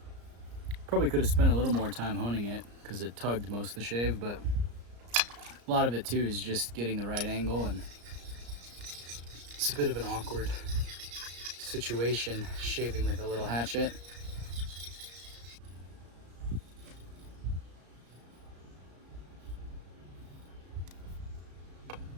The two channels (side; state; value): left; late; 34 ms